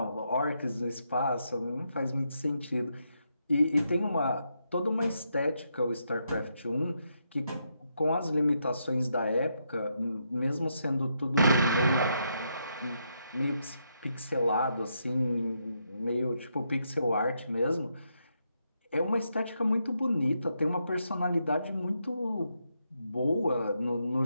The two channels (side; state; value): both; inverted; correlation -0.80